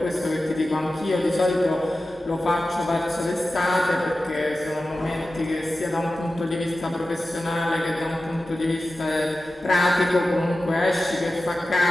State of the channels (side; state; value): both; normal; correlation 0.94